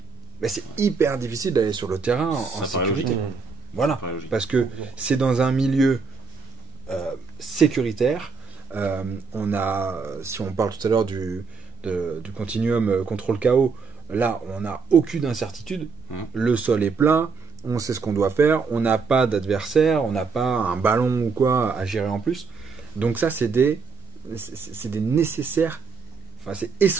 ben c'est hyper difficile d'aller sur le terrain en Ça paraît sécurité. logique. Voilà, Ça paraît logique. parce que c'est dans un milieu sécuritaire. Si on parle tout à l'heure du continuum contrôle KO, là on n'a aucune incertitude. Le sol est plat, on sait ce qu'on doit faire, on n'a pas d'adversaire, on n'a pas un ballon ou quoi à gérer en plus. Donc ça, c'est des nécessaires, enfin c'est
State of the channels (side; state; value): left; quieter; 5.2 dB